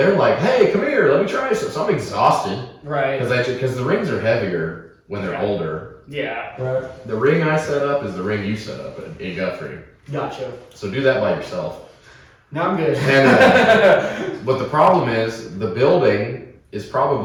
like, "Hey, come here, let me try this." So I'm exhausted, right? Because the rings are heavier when they're older. Yeah. Right. The ring I set up is the ring you set up in Guthrie. Gotcha. So do that by yourself. No, I'm good. And but the problem is the building is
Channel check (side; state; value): both; identical; correlation 1.00